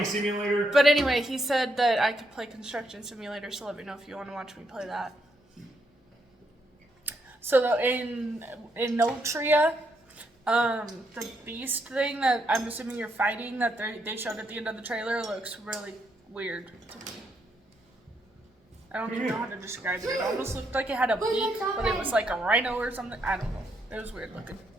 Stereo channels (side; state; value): both; normal; correlation 0.77